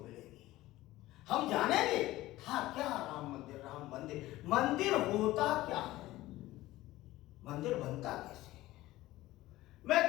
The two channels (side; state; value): right; quieter; 16.9 dB